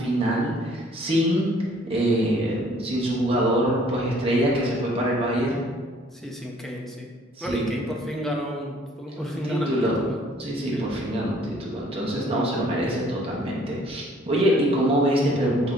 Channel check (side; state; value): both; normal; correlation 0.59